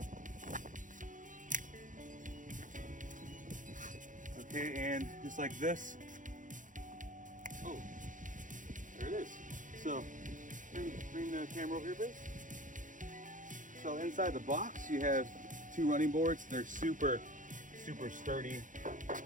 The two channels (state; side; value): late; left; 0.37 ms